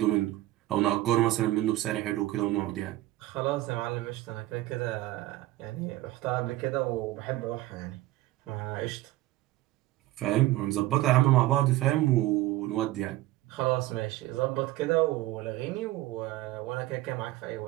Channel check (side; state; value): left; quieter; 16.6 dB